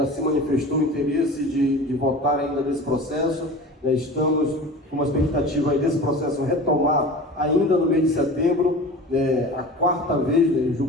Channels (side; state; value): both; normal; correlation 0.36